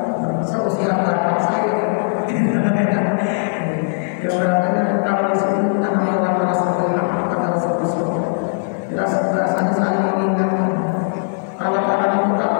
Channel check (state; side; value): silent; right; 65 dB below the other